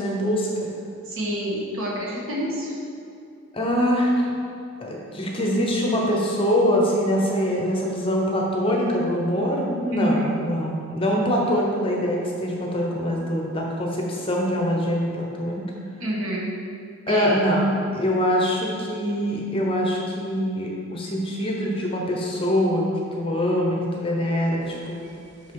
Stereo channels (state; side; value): normal; both; correlation 0.45